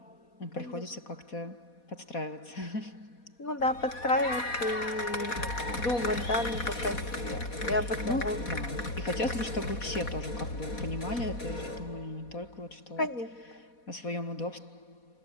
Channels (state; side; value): late; right; 4.2 ms